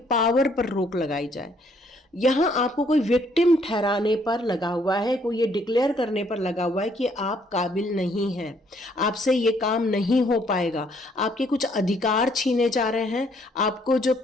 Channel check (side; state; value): both; normal; correlation 0.67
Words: पावर पर रोक लगाई जाए। यहाँ आपको कोई विक्टिम ठहराने पर लगा हुआ है, कोई ये डिक्लेयर करने पर लगा हुआ है कि आप काबिल नहीं हैं, आपसे ये काम नहीं हो पाएगा, आपके कुछ अधिकार छीने जा रहे हैं, आपको जो